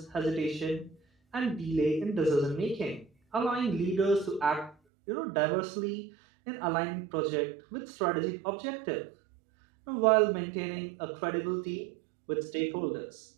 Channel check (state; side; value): drops out; left; at 4.8 s